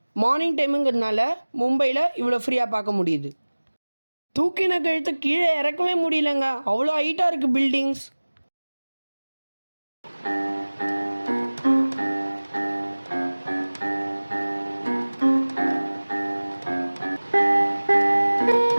மார்னிங் டைமுங்கிறதுனால மும்பையில் இவ்வளோ ஃப்ரீயாக பார்க்க முடியுது. தூக்கின கழுத்தை கீழே இறக்கவே முடியலங்க, அவ்வளோ ஹைட்டாக இருக்குது பில்டிங்ஸ்.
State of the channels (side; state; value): both; inverted; correlation -1.00